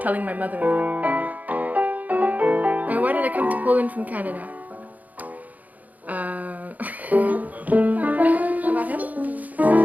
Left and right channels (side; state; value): left; late; 0.078 ms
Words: telling my mother. And why did I come to Poland from Canada? About him?